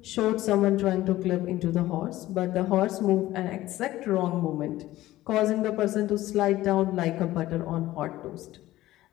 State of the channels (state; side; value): quieter; right; 15.9 dB